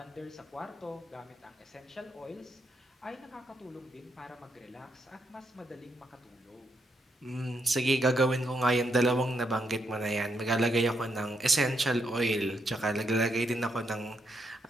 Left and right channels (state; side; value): normal; both; correlation 0.78